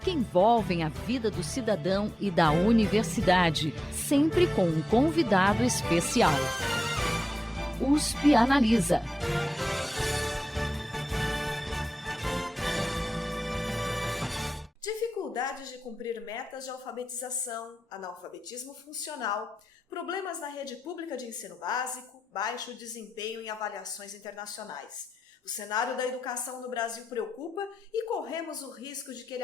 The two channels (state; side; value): normal; both; correlation 0.92